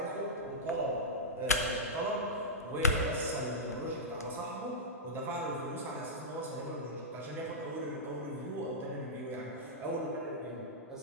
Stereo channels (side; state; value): both; normal; correlation -0.11